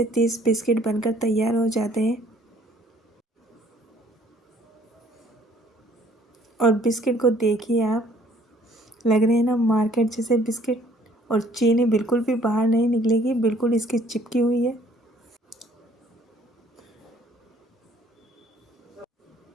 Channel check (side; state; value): both; normal; correlation 0.59